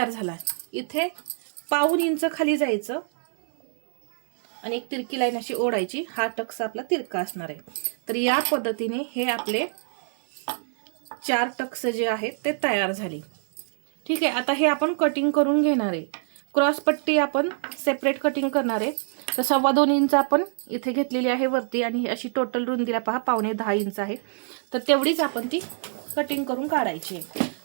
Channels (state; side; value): silent; left; 61 dB below the other